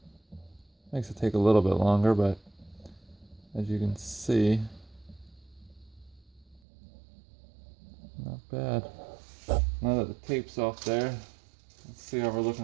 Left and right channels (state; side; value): drops out; left; at 6.6 s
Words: makes it take a little bit longer, but as you can see, not bad. Now that the tape's off there, let's see how we're